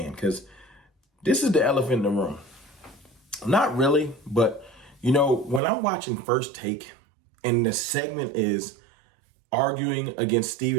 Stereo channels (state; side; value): drops out; left; at 5.6 s